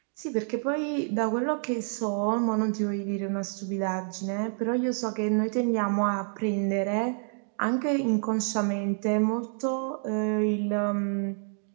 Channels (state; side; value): silent; left; 59 dB below the other